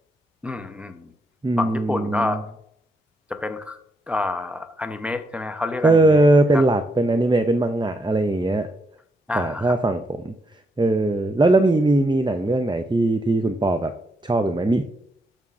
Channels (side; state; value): both; normal; correlation 0.78